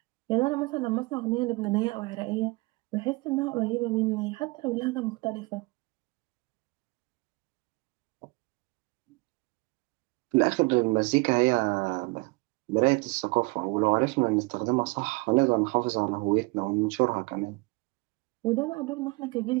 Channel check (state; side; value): quieter; left; 25.4 dB